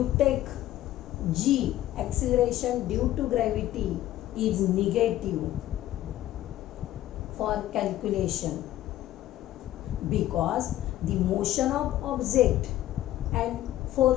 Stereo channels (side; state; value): right; quieter; 13.9 dB